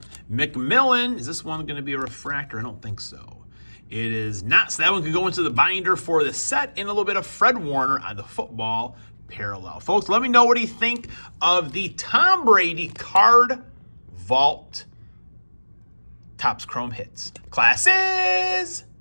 McMillan, is this one going to be a refractor? I don't think so. It is not, so that one could go into the binder for the set, and a little bit of Fred Warner on the football parallel. Folks, let me know what you think of the Tom Brady card vault Topps Chrome hits. Class is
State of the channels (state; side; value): inverted; both; correlation -1.00